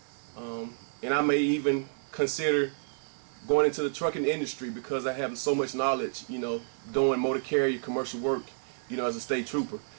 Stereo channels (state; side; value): silent; left; digital silence